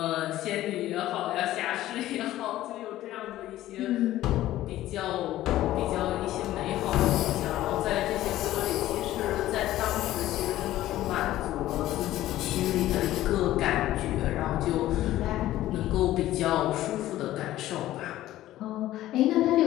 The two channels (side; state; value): right; quieter; 14.6 dB